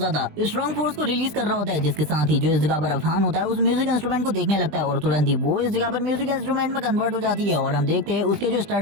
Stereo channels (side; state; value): left; late; 20 ms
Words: स्ट्रॉन्ग फोर्स को रिलीज कर रहा होता है। जिसके साथ ही जो इस जगह पर अफहान होता है उस म्यूजिक इंस्ट्रूमेंट को देखने लगता है और तुरंत ही वो इस जगह पर म्यूजिक इंस्ट्रूमेंट में कन्वर्ट हो जाती है। और हम देखते हैं उसके जो